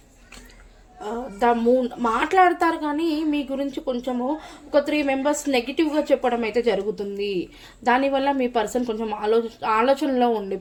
మాట్లాడతారు కానీ మీ గురించి కొంచెము ఒక 3 members నెగిటివ్గా చెప్పడం అయితే జరుగుతుంది. దానివల్ల మీ పర్సన్ కొంచెం ఆలోచనలో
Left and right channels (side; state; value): both; identical; correlation 1.00